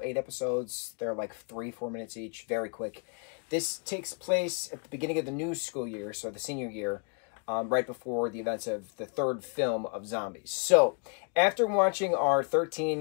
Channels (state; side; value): quieter; right; 39.8 dB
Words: 8 episodes, they're like 3-4 minutes each, very quick. This takes place at the beginning of the new school year, so the senior year, right before the events of the third film of Zombies. So, after watching our